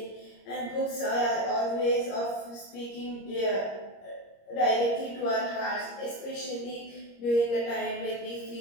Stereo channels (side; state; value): right; late; 26 ms